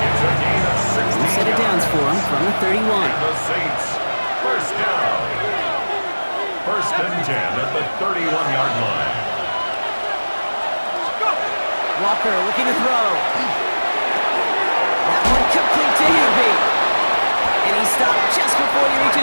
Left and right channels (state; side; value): inverted; both; correlation -1.00